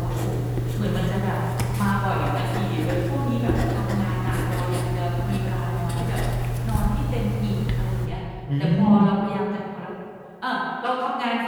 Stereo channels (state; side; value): identical; both; correlation 1.00